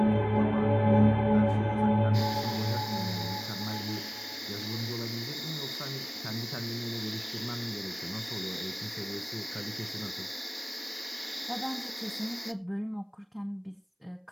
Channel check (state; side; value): identical; both; correlation 1.00